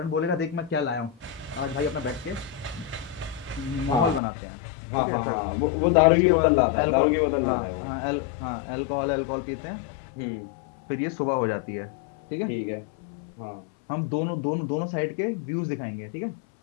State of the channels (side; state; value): right; drops out; at 4.2 s